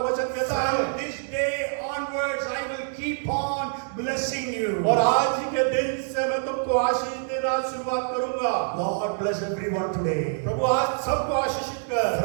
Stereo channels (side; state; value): left; silent; 61 dB below the other